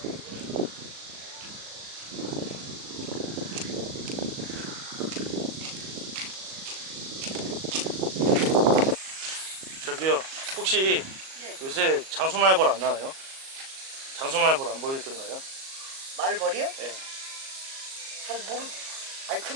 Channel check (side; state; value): left; late; 37 ms